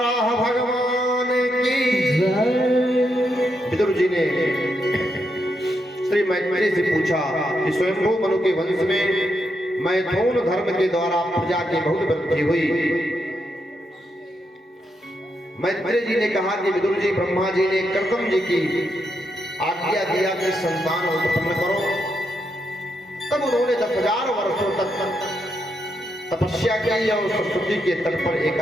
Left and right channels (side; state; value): both; normal; correlation 0.81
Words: भगवान की जय। विदुर जी ने श्री मैत्रेय से पूछा कि स्वयंभू मनु के वंश में मैथुन धर्म के द्वारा प्रजा की बहुत वृद्धि हुई। मैत्रेय जी ने कहा कि विदुर जी, ब्रह्मा जी ने कर्दम जी की आज्ञा दिया कि संतान उत्पन्न करो। तब उन्होंने 10,000 वर्षों तक तपस्या की और सरस्वती के तट पर